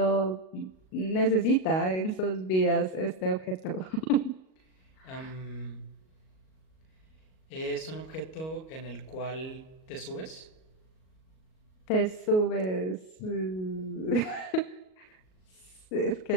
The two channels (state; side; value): late; right; 38 ms